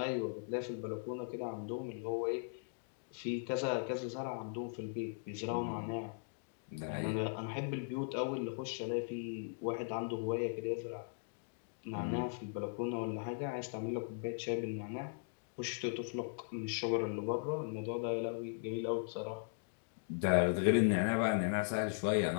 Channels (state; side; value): silent; right; digital silence